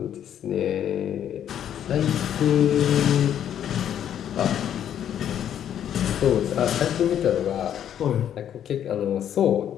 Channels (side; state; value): right; quieter; 9.9 dB